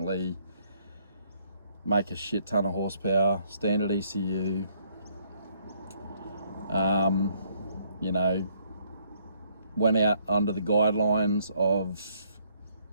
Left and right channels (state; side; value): inverted; both; correlation -0.68